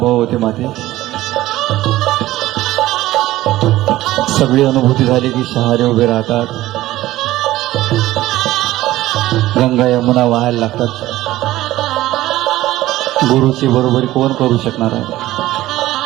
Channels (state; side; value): quieter; left; 15.9 dB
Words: होते माते. सगळी अनुभूती झाली की शहारे उभे राहतात, गंगा यमुना वाहायला लागतात. गुरुची बरोबरी कोण करू शकणार आहे.